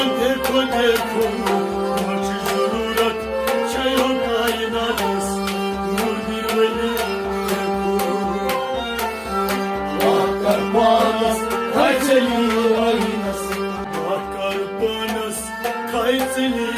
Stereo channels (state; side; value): identical; both; correlation 1.00